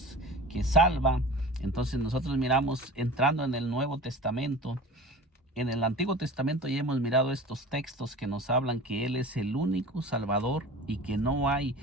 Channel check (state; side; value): normal; both; correlation 0.38